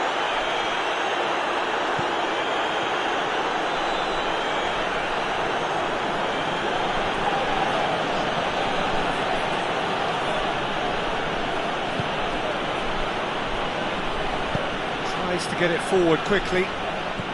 Tries to get it forward quickly.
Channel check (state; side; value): identical; both; correlation 1.00